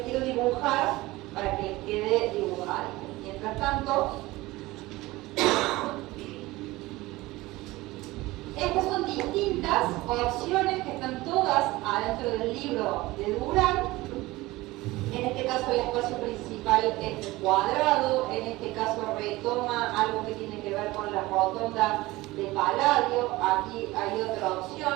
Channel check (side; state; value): left; quieter; 19.6 dB